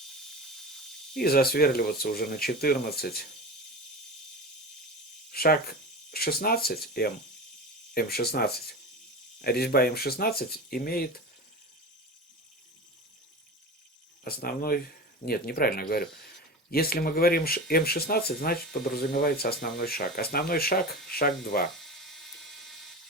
И засверливаться уже на 14. Шаг 16 М16. Резьба М16 имеет основной... Нет, неправильно говорю. Если мы говорим М16, значит подразумевается основной шаг. Основной шаг, шаг 2.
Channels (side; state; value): both; normal; correlation 0.29